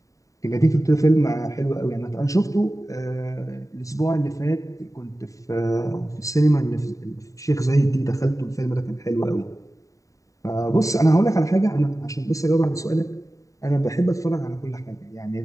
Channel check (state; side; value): late; right; 0.16 ms